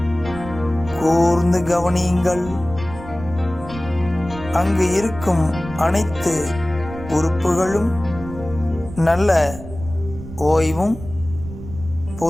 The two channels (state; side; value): noise; right; rumble, 13 dB below the sound